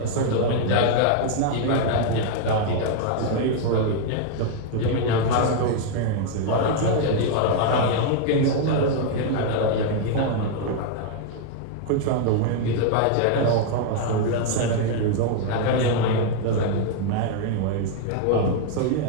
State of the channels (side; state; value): both; different; correlation 0.00